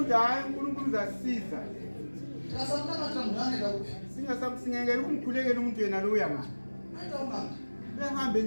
hayi uNkulunkulu uzasisiza Tikasamtanga tamngane lapho. singekela ukumkhulekela umuntu yena lo uyangani Ayita unganga. uyahambe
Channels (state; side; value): inverted; both; correlation -1.00